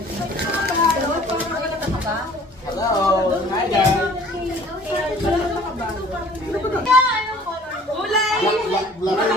Hello! Hi guys! Kulay! Black.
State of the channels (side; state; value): both; normal; correlation 0.51